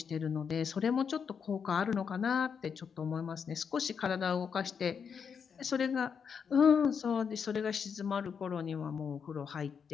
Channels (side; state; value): right; quieter; 6.6 dB